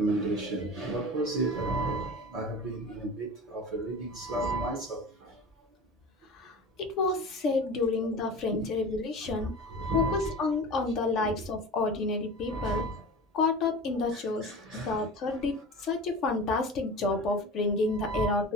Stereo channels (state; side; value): normal; both; correlation 0.34